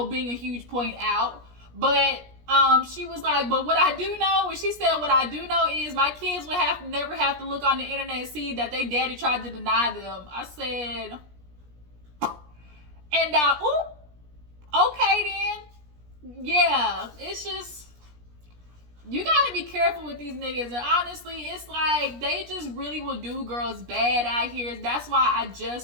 being a huge point out. But she was like, but what I do know, when she said what I do know is my kids would never have to look on the internet and see that they daddy tried to deny them. I said, and okay then. Yeah, it's just, you gotta be careful with these niggas. And honestly, it's like, they just really will do girls bad out here. That's why I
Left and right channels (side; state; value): left; late; 17 ms